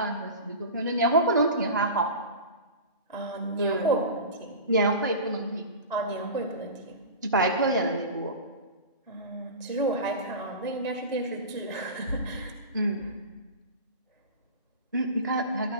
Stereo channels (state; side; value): inverted; both; correlation -0.31